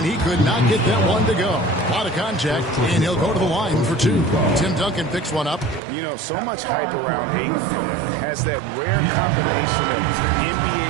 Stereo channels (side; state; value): left; drops out; at 5.8 s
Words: he could not get that one to go. A lot of contact, and he'll go to the line for 2. Tim Duncan picks one up. You know, so much hype around Ayton. Has that rare combination of